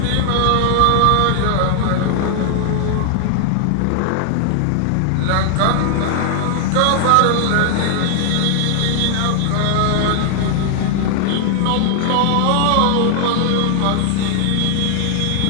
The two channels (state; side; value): different; both; correlation 0.00